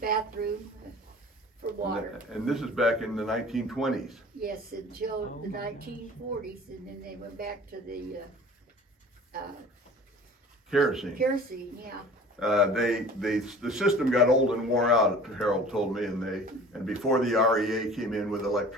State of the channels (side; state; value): both; normal; correlation 0.44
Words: for water. And this is back in the 1920s. Yes, until the 1940s, and then they went back to the, Kerosene. kerosene, yeah. The system got old and wore out, Harold told me, and before the REA came in with